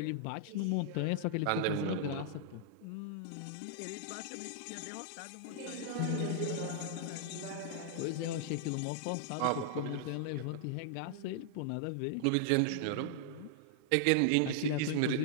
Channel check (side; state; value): both; different; correlation -0.01